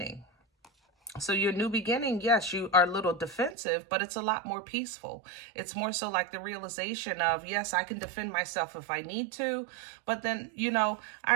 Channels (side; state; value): left; drops out; at 3.6 s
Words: So your new beginning, yes, you are a little defensive, but it's a lot more peaceful. It's more so like the realization of, yes, I can defend myself if I need to. But then, you know, I